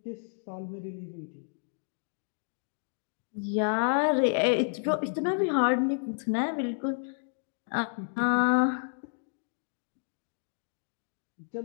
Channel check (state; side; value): silent; right; digital silence